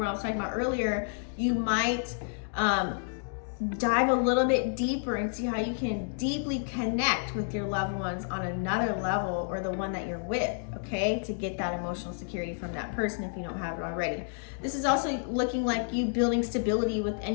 I was talking about earlier, you might dive a little bit deeper and see how you can deeply connect with your loved ones on another level, or the one that you're with, okay, to get that emotional security from that person if you don't have it already. This is also looking like you building stability with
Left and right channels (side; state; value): right; silent; digital silence